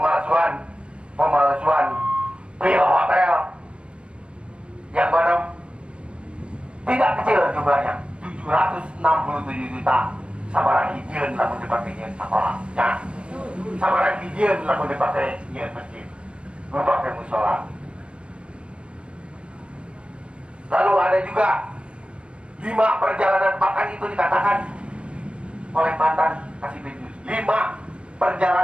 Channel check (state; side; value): late; left; 0.057 ms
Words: pemalsuan bill hotel yang mana tidak kecil jumlahnya, 767 juta. Sabaraha hijieun lamun dipakai nyeun sakola nya, sabaraha hijieun lamun dipakai nyeun masjid, dipakai musola. Lalu ada juga 5 perjalanan, bahkan itu dikatakan oleh mantan Kasibidus, 5